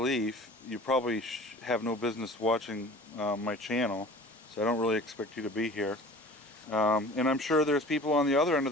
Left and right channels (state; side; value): normal; both; correlation 0.43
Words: you probably have no business watching my channel. So I don't really expect you to be here. And I'm sure there's people on the other end of